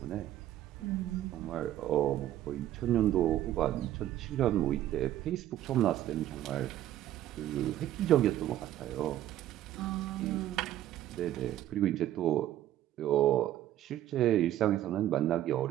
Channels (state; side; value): quieter; left; 12.9 dB